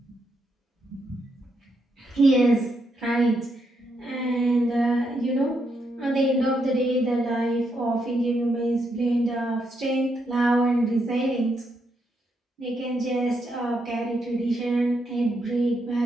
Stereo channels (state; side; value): normal; both; correlation 0.79